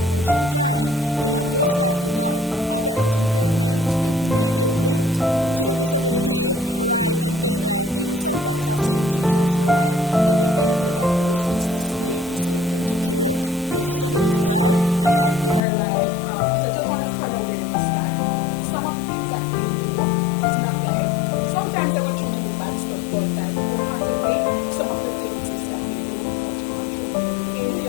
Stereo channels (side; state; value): right; drops out; at 15.6 s